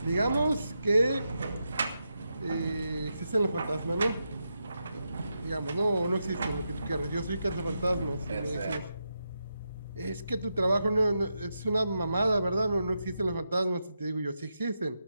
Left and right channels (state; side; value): inverted; both; correlation -0.86